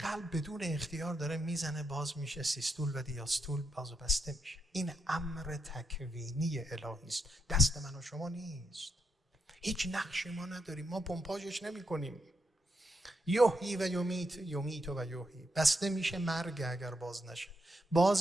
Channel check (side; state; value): both; normal; correlation 0.80